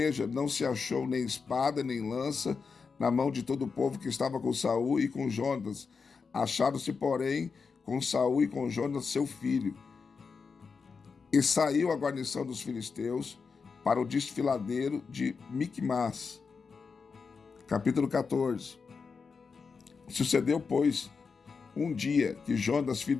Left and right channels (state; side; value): quieter; right; 5.2 dB